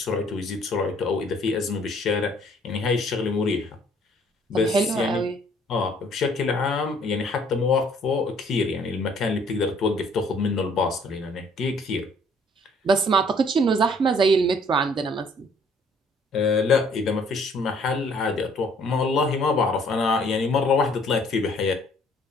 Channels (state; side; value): normal; both; correlation 0.60